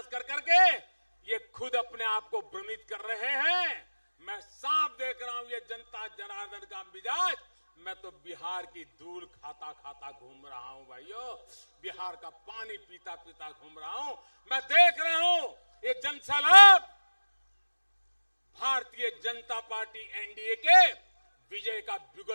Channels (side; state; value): both; inverted; correlation -1.00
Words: कर करके ये खुद अपने आप को भ्रमित कर रहे हैं। मैं साफ देख रहा हूं ये जनता जनार्दन का मिजाज। मैं तो बिहार की धूल खाता खाता घूम रहा हूं भाइयों, बिहार का पानी पीता पीता घूम रहा हूं। मैं देख रहा हूं ये जनसैलाब भारतीय जनता पार्टी एनडीए के विजय का